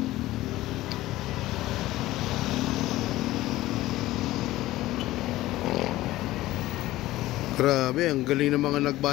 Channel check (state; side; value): quieter; right; 16.5 dB